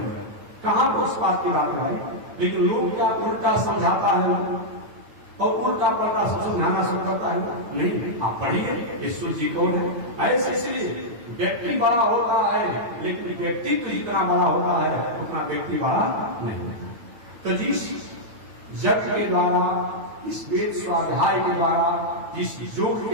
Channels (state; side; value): late; left; 9.0 ms